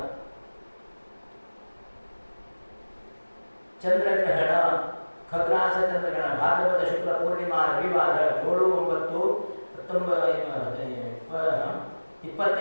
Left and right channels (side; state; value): both; inverted; correlation -1.00